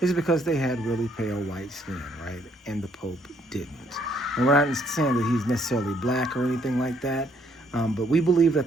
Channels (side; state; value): both; normal; correlation 0.68